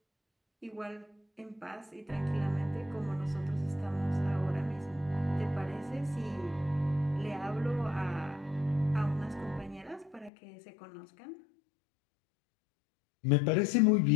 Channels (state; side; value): drops out; right; at 10.3 s